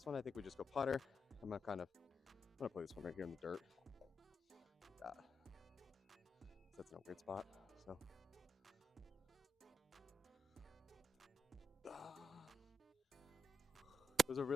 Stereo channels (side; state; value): both; normal; correlation 0.84